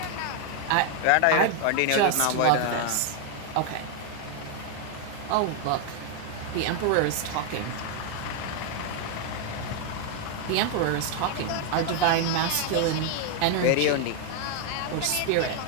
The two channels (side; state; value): both; different; correlation 0.00